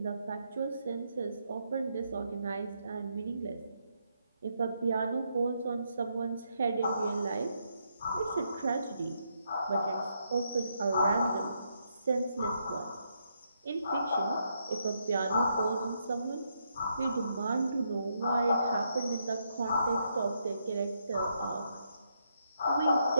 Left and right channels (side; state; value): both; inverted; correlation -0.78